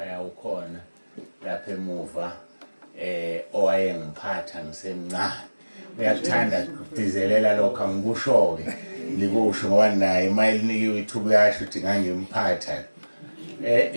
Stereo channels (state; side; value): inverted; both; correlation -1.00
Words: yawukhona lapha emuva, owayengiphatha ngisemncane. Uyakuthanda ukudizelela lokho, angikusho-ke likusho ngoba naye mayelinikiwe ithuba uyasho ukuthi ngangimphatha.